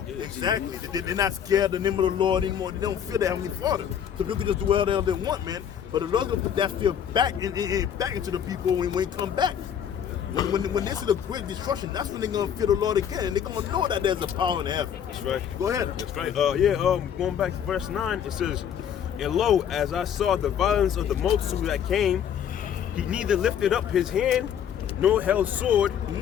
Exactly. They're not scared of the name of the Lord anymore. They don't fear the Heavenly Father. So people can just do whatever they want, man. But the Lord's gonna put that fear back into the people when they come back. When they see the great destruction, that's when they're gonna fear the Lord again, and they're gonna know that there's a power in heaven. That's right. Go ahead. That's right. Going back to verse 9, it says, "And lo, as I saw the violence of the multitude that came, he neither lifted up his hand, nor held sword,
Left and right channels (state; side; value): quieter; right; 8.8 dB